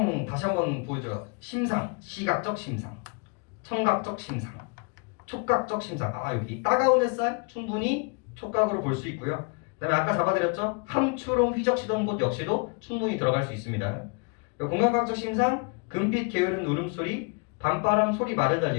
다시 한번 보여줘요. 심상, 시각적 심상, 청각적 심상, 촉각적 심상. 아, 여기 따가운 햇살 충분히 촉각으로 볼 수 있고요. 그다음에 아까 잡아드렸죠? 함추롬 휘적시던 곳 역시도 충분히 들어갈 수 있습니다. 공감각적 심상, 금빛 게으른 울음소리, 밤바람 소리 말에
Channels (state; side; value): quieter; right; 33.4 dB